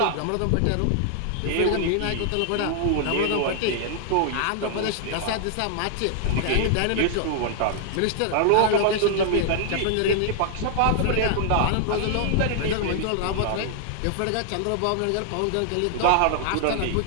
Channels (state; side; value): different; both; correlation 0.00